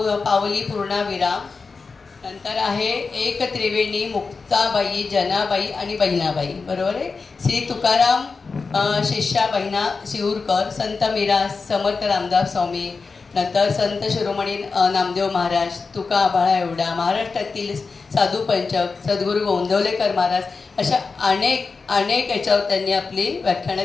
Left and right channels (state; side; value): quieter; right; 4.5 dB